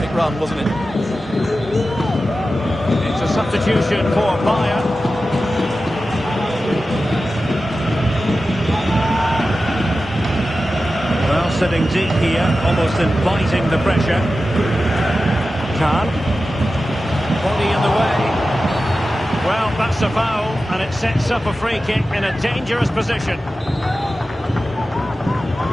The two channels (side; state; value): both; normal; correlation 0.93